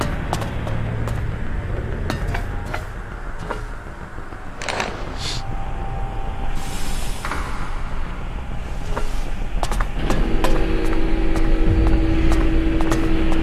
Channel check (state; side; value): identical; both; correlation 1.00